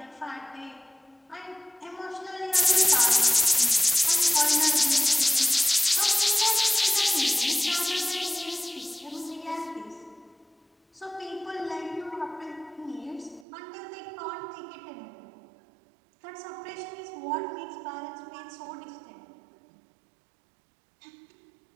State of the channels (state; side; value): drops out; left; at 13.5 s